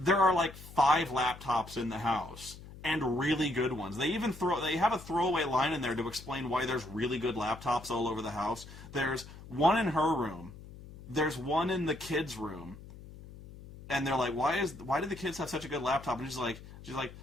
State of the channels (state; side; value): noise; left; hum, 16 dB below the sound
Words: are like 5 laptops in the house, and really good ones. They have a throwaway line in there to explain why there's really good laptops all over the house. There's one in her room. There's one in the kids' room. And they're like, why do the kids have such a good laptop? And she's like,